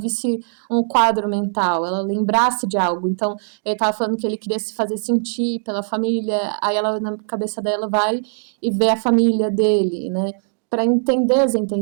um quadro mental, ela lembrasse de algo. Então, ele estava falando que ele queria se fazer sentir pela família, aí ela, na cabeça dela, vai e vê a família dele, né? Para entender as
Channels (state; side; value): silent; left; digital silence